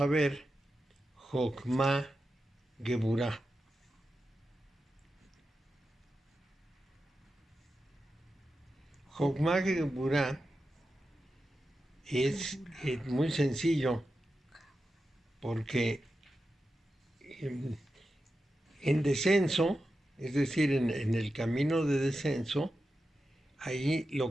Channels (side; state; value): both; normal; correlation 0.90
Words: ver Jokma Geburah. Jokma Geburah es muy sencillo, porque en descenso, es decir, en el camino de descenso, ahí